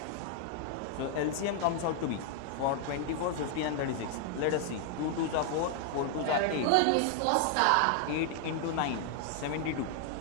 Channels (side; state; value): both; different; correlation 0.00